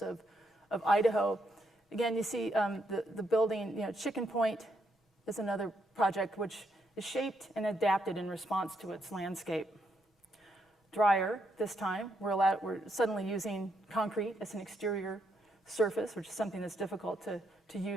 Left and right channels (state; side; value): normal; both; correlation 0.77